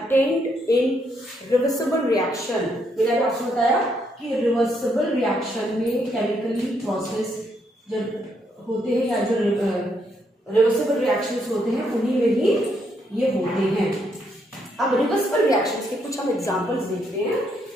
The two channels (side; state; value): both; normal; correlation 0.75